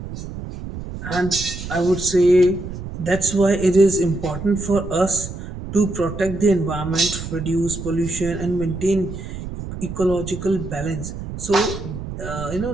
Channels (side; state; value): right; noise; rumble, 9 dB below the sound